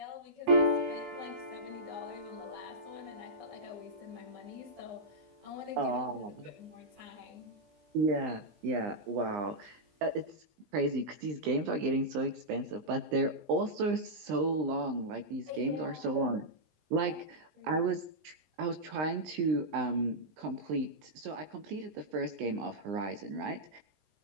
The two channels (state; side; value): late; left; 20 ms